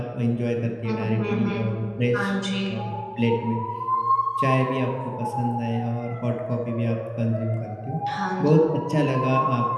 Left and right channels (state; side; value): identical; both; correlation 1.00